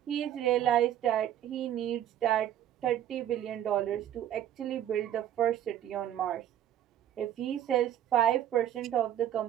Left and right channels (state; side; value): quieter; left; 11.3 dB